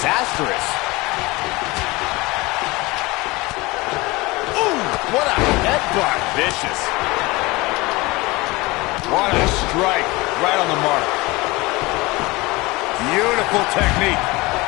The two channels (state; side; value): quieter; right; 22.7 dB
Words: Ooh, what a headbutt. Vicious. What a strike. Right on the mark. Beautiful technique.